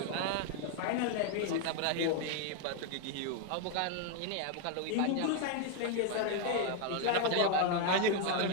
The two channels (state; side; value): different; both; correlation 0.01